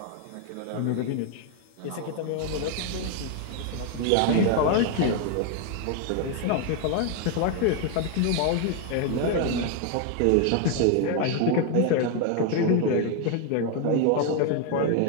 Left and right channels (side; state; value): both; different; correlation 0.01